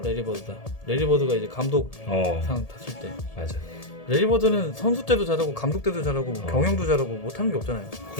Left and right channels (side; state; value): right; late; 1.7 ms